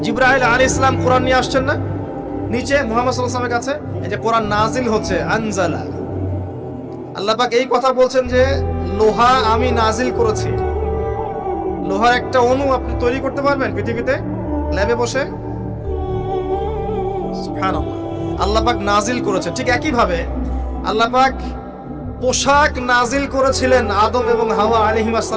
জিবরাইল আলাইহিস সালাম কোরআন নিয়ে আসছেন না নিচে মুহাম্মদ সাল্লাল্লাহু আলাইহি ওয়াসাল্লামের কাছে? এই যে কোরআন নাজিল হচ্ছে, আনজালা। আল্লাহ পাক এই কথা বলছেন যে লোহা আমি নাজিল করেছি। লোহার একটা অণু আপনি তৈরি করতে পারবেন পৃথিবীতে ল্যাবে বসে? সুবহানাল্লাহ। আল্লাহ পাক নাজিল করেছে। ঠিক একই ভাবে আল্লাহ পাক পোশাক নাজিল করেছিলেন আদম এবং হাওয়া আলাইহিস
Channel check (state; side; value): identical; both; correlation 1.00